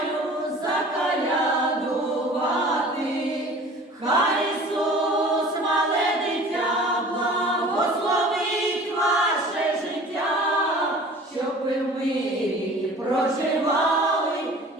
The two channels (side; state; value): both; normal; correlation 0.44